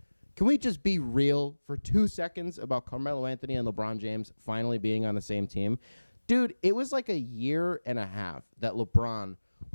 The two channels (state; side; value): inverted; both; correlation -1.00